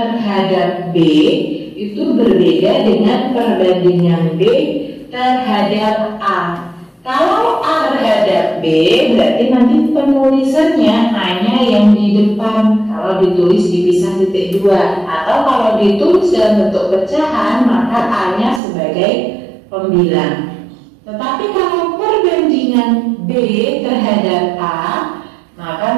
B itu berbeda dengan perbandingan B terhadap A. Kalau A terhadap B berarti nanti penulisannya hanya yang di depan kalau ditulis dipisah titik 2, atau kalau ditulis dalam bentuk pecahan maka A-nya sebagai pembilang. Tetapi kalau perbandingan B terhadap A maka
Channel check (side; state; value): left; drops out; at 18.6 s